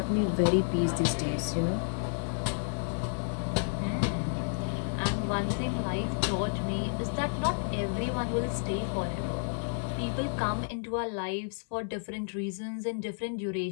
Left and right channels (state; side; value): silent; right; digital silence